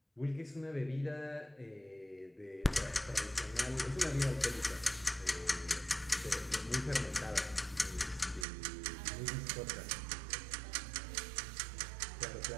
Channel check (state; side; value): drops out; left; at 8.5 s